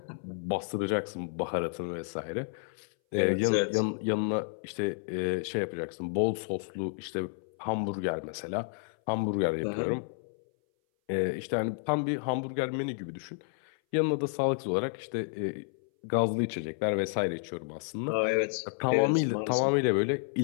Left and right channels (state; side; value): silent; right; 57 dB below the other